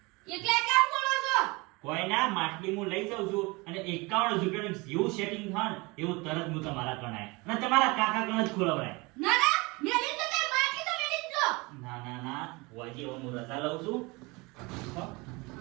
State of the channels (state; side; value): quieter; left; 25.3 dB